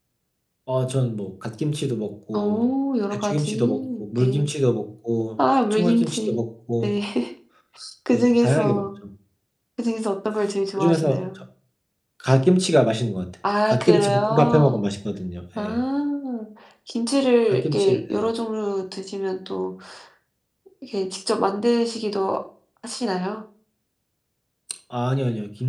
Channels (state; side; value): identical; both; correlation 1.00